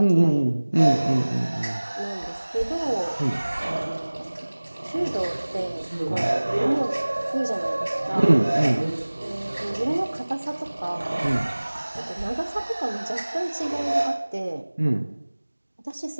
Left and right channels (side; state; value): both; inverted; correlation -1.00